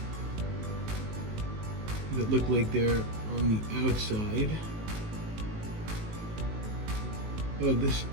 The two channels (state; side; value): late; left; 19 ms